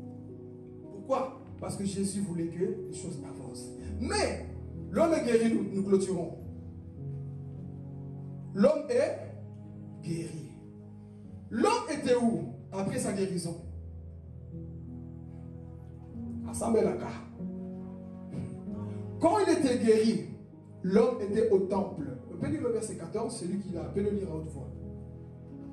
Pourquoi? Parce que Jésus voulait que les choses avancent. Mais, l'homme est guéri, nous clôturons. L'homme est guéri. L'homme était où après sa guérison? À Samelaka. Quand il était guéri, l'homme était au temple. On peut lire le verset 14, celui qui l'a, peut le lire à haute voix.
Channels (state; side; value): identical; both; correlation 1.00